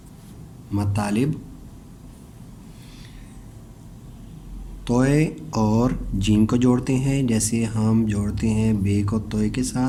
मतालिब, तोय और जीम को जोड़ते हैं, जैसे हम जोड़ते हैं बे को तोय के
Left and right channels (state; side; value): identical; both; correlation 1.00